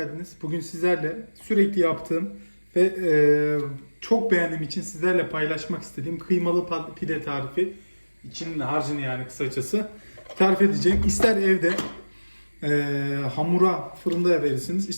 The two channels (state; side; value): inverted; both; correlation -1.00